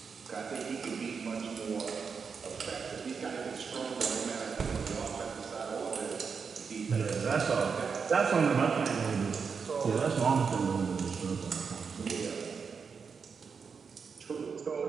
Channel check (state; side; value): quieter; left; 5.8 dB